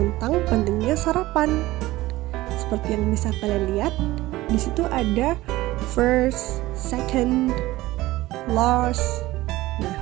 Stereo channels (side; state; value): left; quieter; 17.7 dB